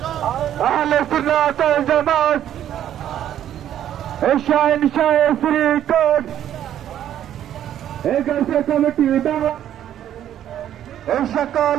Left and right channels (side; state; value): left; quieter; 10.9 dB